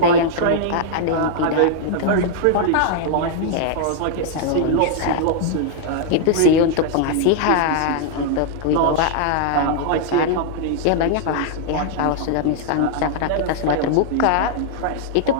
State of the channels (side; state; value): both; different; correlation -0.01